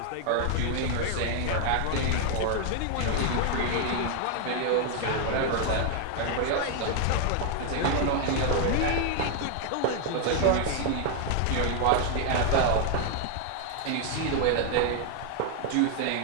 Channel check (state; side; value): different; both; correlation 0.00